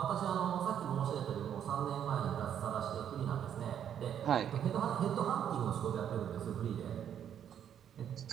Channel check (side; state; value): left; quieter; 9.3 dB